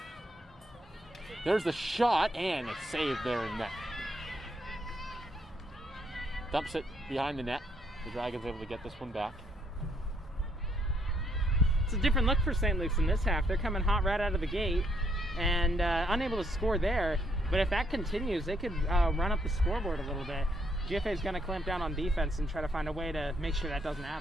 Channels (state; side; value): normal; both; correlation 0.72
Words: There's the shot, and it's saved there in net. Dumps it behind the net. The Dragons able to get this one back. It's a different look for St. Luke's in this half. They're coming hot right out of the gate and unable to score there. But if that continues, they could run up the scoreboard a little bit. GFA is going to clamp down on defense and try to find a way to make sure that doesn't